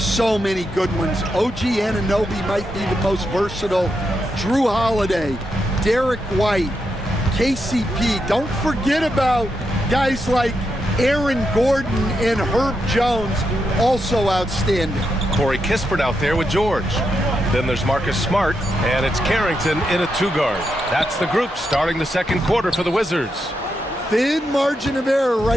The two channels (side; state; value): both; normal; correlation 0.84